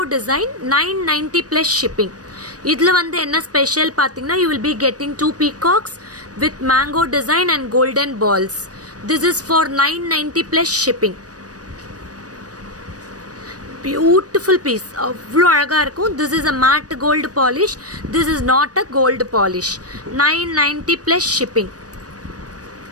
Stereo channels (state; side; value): late; left; 0.68 ms